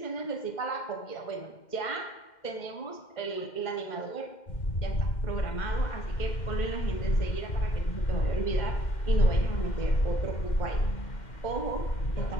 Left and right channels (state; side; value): late; right; 2.1 ms